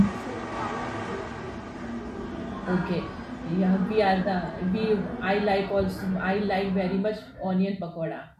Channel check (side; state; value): both; identical; correlation 1.00